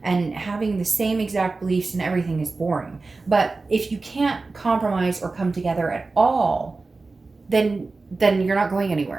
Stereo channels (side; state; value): left; quieter; 3.7 dB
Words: having the same exact beliefs and everything is boring. But if you can't compromise or come together at all, then you're not going